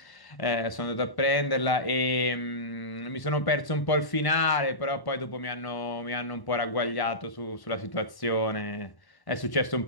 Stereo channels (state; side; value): late; right; 1.1 ms